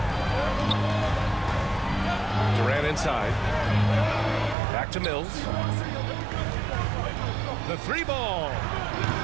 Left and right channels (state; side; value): drops out; left; at 4.5 s